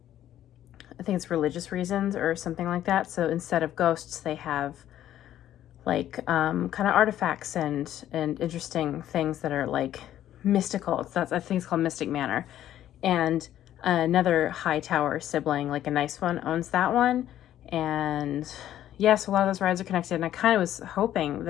it's religious reasons or something like that. So instead of ghosts, they have like kind of artifacts and interesting things that are like mystical. I think it's called Mystic Manor. And another Hightower sibling, like a nice one, owns that one. And yes, a lot of those rides are connected. And I kind of was hoping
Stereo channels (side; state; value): right; quieter; 12.0 dB